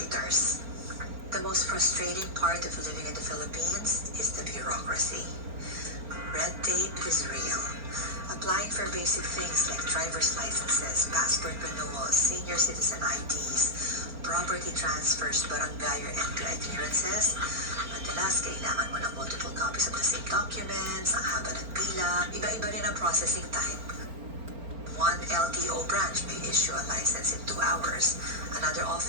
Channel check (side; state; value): left; late; 4.4 ms